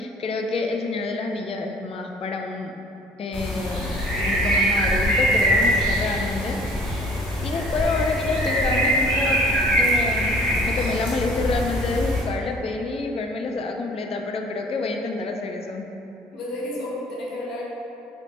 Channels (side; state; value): both; normal; correlation 0.51